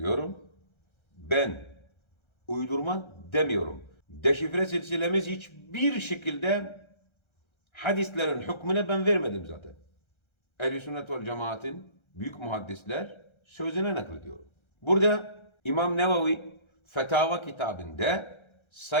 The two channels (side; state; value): right; late; 1.3 ms